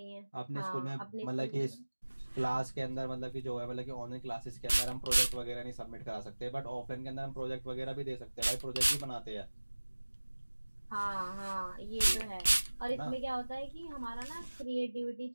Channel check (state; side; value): inverted; both; correlation -1.00